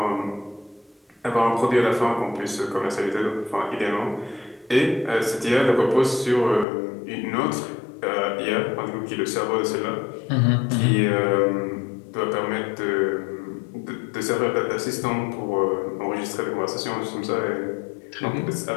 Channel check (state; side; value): drops out; right; at 6.7 s